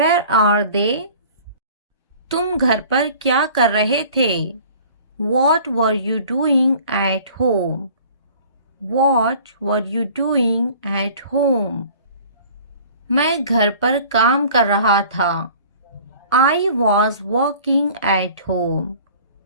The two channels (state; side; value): inverted; both; correlation -0.48